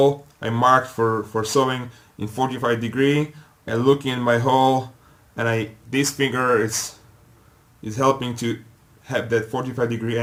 I marked for sewing in 45 degree. I look in my hole, and this finger is helping to have that 45 degree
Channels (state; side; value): identical; both; correlation 1.00